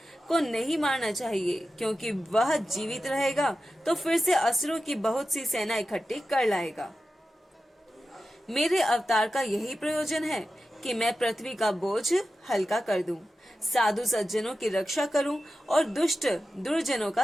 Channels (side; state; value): both; normal; correlation 0.93